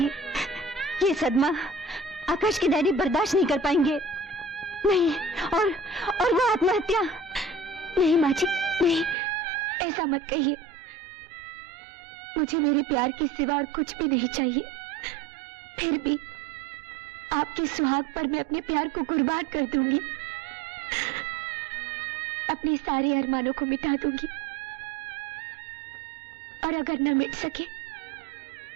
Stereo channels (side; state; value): left; drops out; at 9.2 s